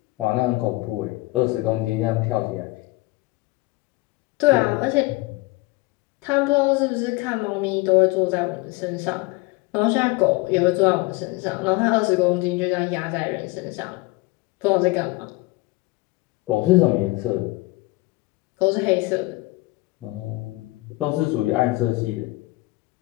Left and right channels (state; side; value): quieter; right; 22.2 dB